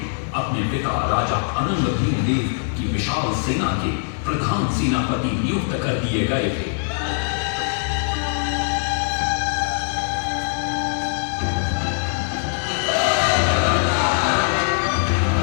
अपने पिता राजा अनंग भीमदेव की विशाल सेना के प्रधान सेनापति नियुक्त कर दिए गए थे।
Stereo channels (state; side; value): silent; right; digital silence